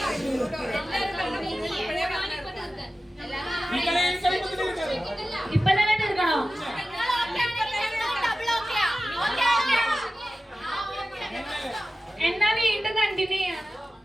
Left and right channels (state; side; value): normal; both; correlation 0.95